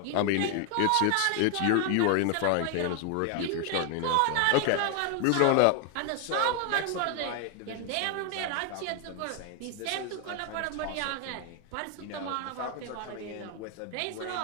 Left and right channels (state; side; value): different; both; correlation 0.00